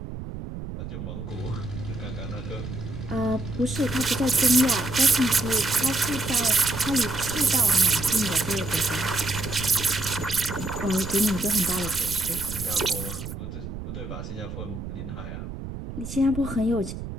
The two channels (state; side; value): noise; right; rumble, 8 dB below the sound